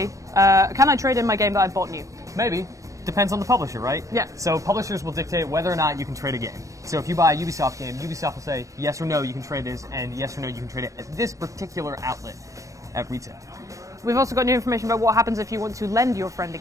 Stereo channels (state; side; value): late; left; 0.16 ms